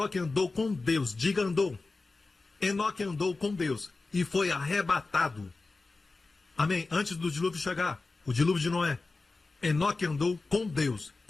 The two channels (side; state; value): right; quieter; 3.6 dB